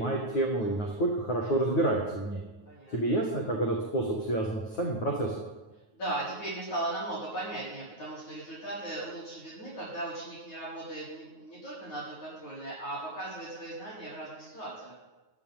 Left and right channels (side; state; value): right; late; 9.4 ms